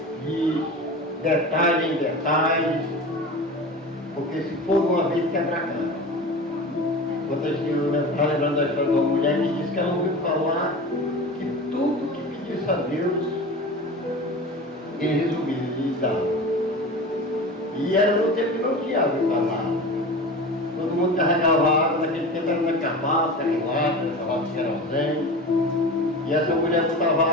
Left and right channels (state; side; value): normal; both; correlation 0.32